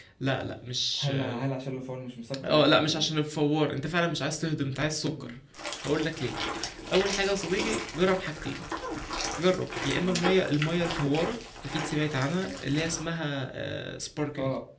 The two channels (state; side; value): identical; both; correlation 1.00